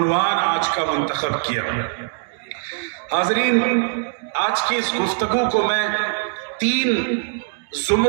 آج کا منتخب کیا. حاضرین، آج کی اس گفتگو کو میں 3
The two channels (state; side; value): silent; left; digital silence